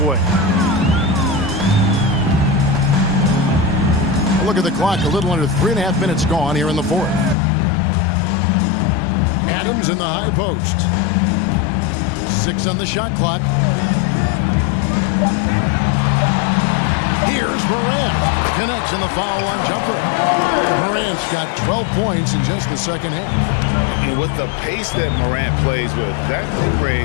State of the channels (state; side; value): drops out; right; at 7.4 s